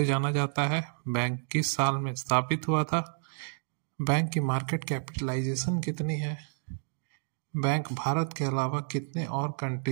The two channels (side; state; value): left; silent; digital silence